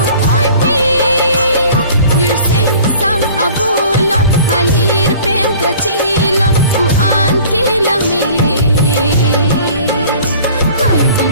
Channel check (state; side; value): inverted; both; correlation -0.48